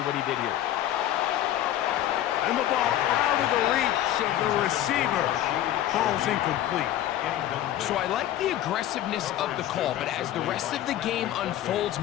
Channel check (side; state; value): right; quieter; 12.5 dB